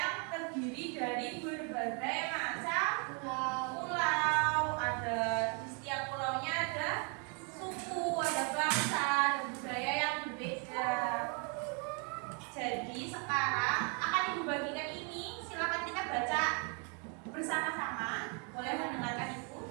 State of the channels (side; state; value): left; quieter; 36.5 dB